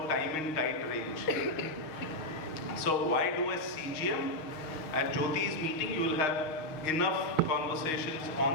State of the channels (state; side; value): late; right; 6.4 ms